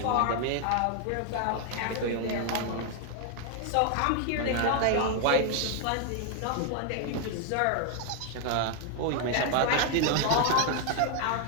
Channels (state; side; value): different; both; correlation 0.00